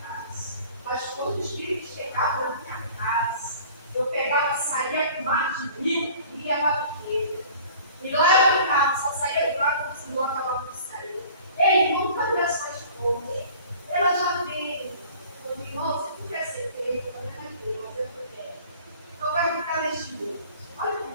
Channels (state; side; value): inverted; both; correlation -0.47